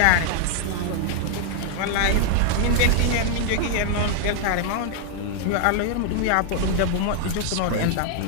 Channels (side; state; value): both; different; correlation 0.00